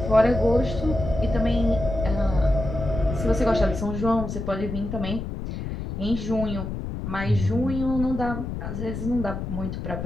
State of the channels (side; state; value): left; noise; rumble, 6 dB below the sound